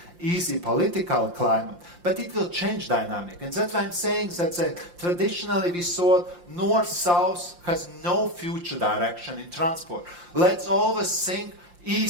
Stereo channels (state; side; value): late; left; 5.7 ms